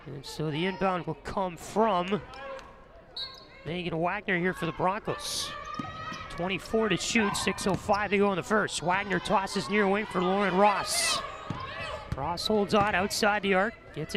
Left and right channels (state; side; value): identical; both; correlation 1.00